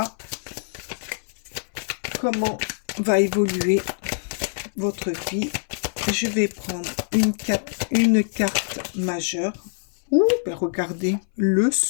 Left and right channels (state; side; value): silent; right; 59 dB below the other